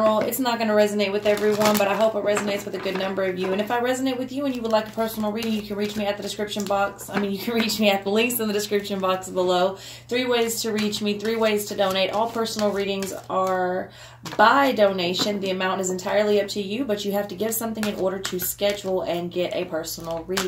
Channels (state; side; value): identical; both; correlation 1.00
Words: It's not going to resonate with everyone, but I hope it resonates with a good number of you. And if I resonate with you and you would like a personal reading, you can reach me at the description box. You can reach me at the links in the description box below. 3 ways to reach me, 3 ways to donate. All personal readings are by donation. The amount is entirely up to you, but you have to give something in order to schedule and get a personal